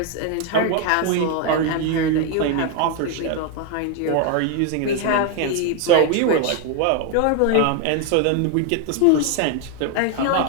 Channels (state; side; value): different; both; correlation 0.01